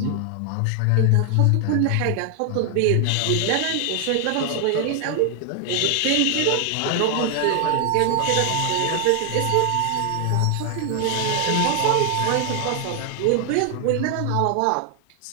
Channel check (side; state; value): both; different; correlation 0.00